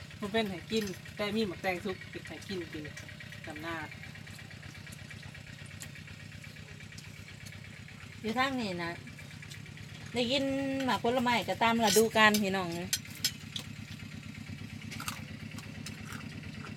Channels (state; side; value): identical; both; correlation 1.00